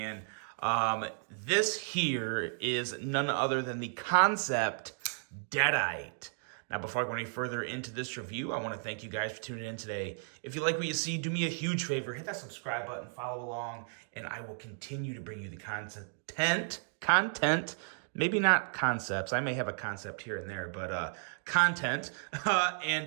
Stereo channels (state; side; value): silent; left; 55 dB below the other